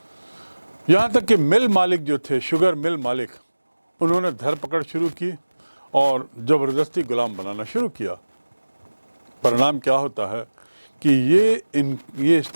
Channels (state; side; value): inverted; both; correlation -1.00